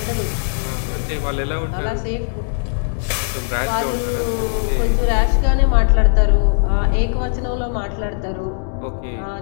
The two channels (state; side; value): silent; right; 66 dB below the other